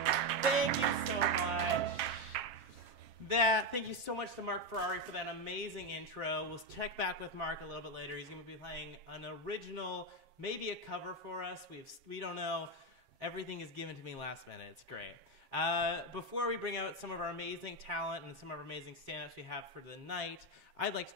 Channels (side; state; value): left; late; 7.5 ms